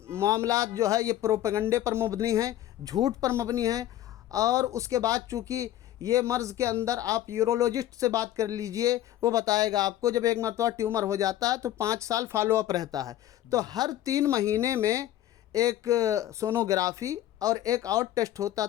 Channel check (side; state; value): right; quieter; 13.0 dB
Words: معاملات جو ہے یہ پروپیگنڈے پر مبنی ہیں، جھوٹ پر مبنی ہیں، اور اس کے بعد چونکہ یہ مرض کے اندر آپ یورولوجسٹ سے بات کر لیجئے، وہ بتائے گا آپ کو جب ایک مرتبہ ٹیومر ہو جاتا ہے تو 5 سال فالو اپ رہتا ہے، تو ہر 3 مہینے میں ایک سونوگرافی اور ایک اور ٹیسٹ ہوتا